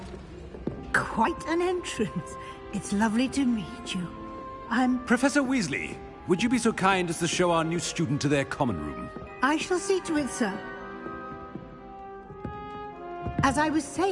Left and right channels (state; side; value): identical; both; correlation 1.00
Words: Quite an entrance. It's lovely to meet you. I'm... Professor Weasley, would you be so kind as to show our new student to their common room? I shall see to it, sir. As I was